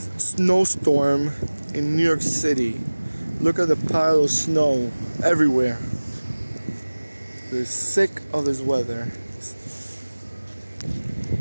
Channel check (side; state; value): both; inverted; correlation -1.00